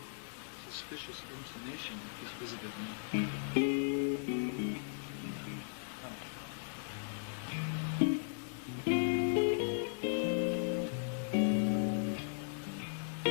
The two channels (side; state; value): right; silent; digital silence